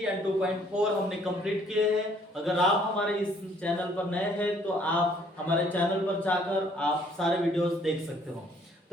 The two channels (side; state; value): both; normal; correlation 0.62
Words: एंड 2.4 हमने कंप्लीट किए हैं। अगर आप हमारे इस चैनल पर नए हैं तो आप हमारे चैनल पर जाकर आप सारे वीडियोस देख सकते हो।